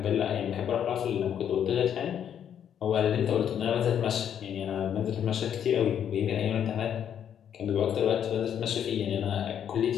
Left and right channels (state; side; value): quieter; right; 9.1 dB